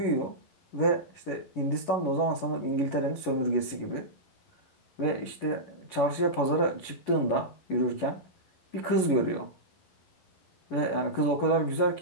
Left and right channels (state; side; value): late; right; 11 ms